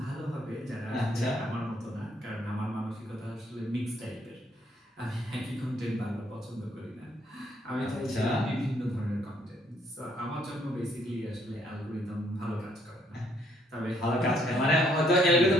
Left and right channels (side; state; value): both; normal; correlation 0.68